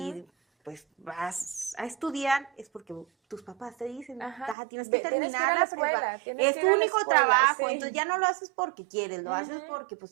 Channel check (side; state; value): left; drops out; at 4.5 s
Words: Ujú. pues vas a estudiar, es porque tus papás te dicen, Ajá. "Taja, tienes que Tienes que ir terminar a la la escuela, prepa. tienes Es que tu ir a la único escuela, trabajo, sí. entonces ya no lo haces porque quieres, lo haces Ujú. porque